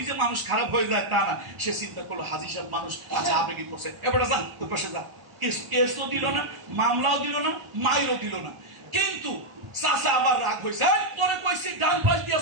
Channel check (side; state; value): left; late; 1.4 ms